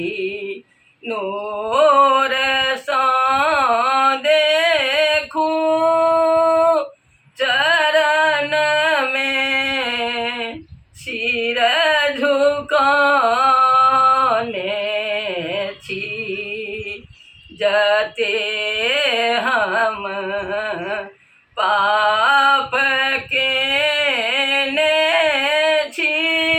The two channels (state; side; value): identical; both; correlation 1.00